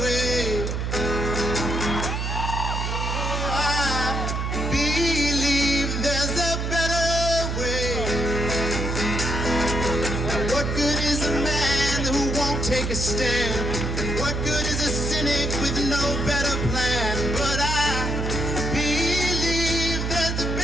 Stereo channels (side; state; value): right; noise; hum, 2 dB below the sound